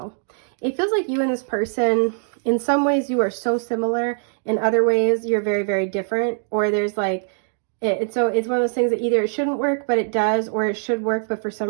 It feels like you and this person, in some ways you are so similar, in other ways you're very, very different, or there's like, so it's one of those things that either it shouldn't work, but it does, or it should work, but for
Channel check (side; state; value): left; silent; digital silence